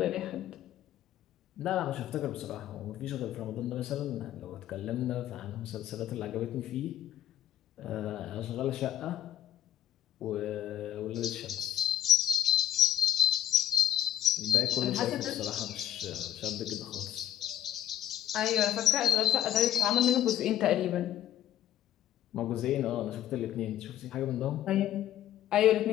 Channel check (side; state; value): right; quieter; 11.5 dB